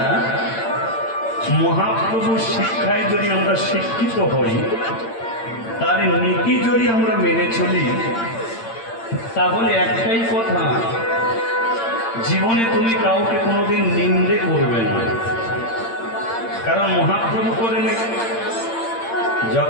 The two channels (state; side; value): late; right; 8.8 ms